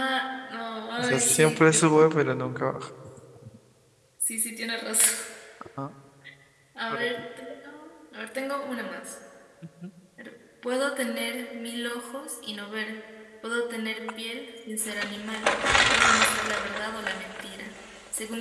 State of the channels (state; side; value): identical; both; correlation 1.00